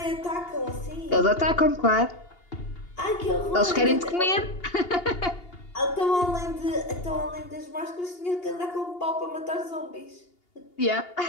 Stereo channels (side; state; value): right; late; 2.8 ms